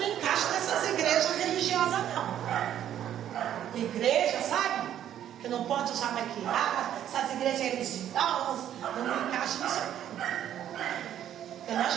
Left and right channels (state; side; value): quieter; left; 10.7 dB